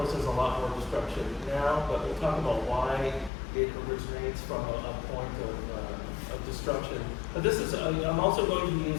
there's a lot more destruction now, but we'll talk about why it originates from a point of destruction. But this is, I'm also going to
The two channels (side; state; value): right; drops out; at 3.3 s